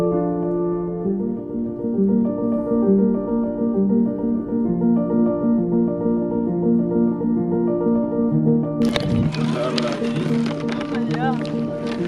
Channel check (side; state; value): both; identical; correlation 1.00